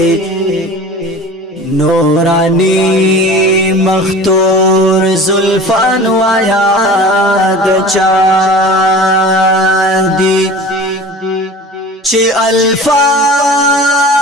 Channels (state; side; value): normal; both; correlation 0.39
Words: نورانی مختور زلفان و یاد چا دی چی الفاظ